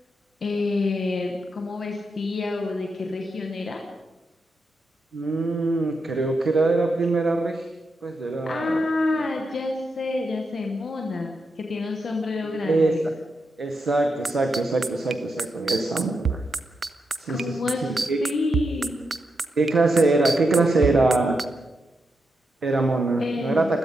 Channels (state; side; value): normal; both; correlation 0.85